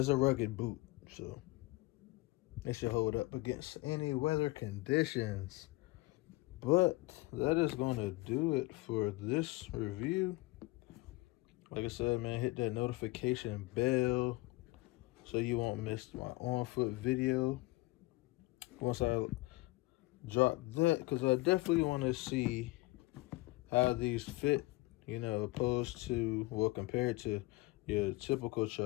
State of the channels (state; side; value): quieter; right; 21.3 dB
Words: a rugged boot, so it should hold up against any weather conditions. But that is going to do it for this review. Like I said, man, hit that notification bell so you won't miss my on-foot video once I drop that, because I definitely want to see how these fit, you know, opposed to, well, compared to your typical